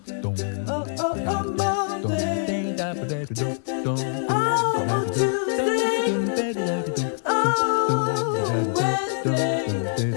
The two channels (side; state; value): right; silent; 62 dB below the other